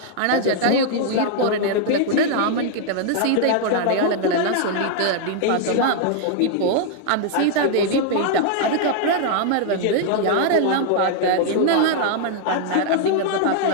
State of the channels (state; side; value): different; both; correlation -0.01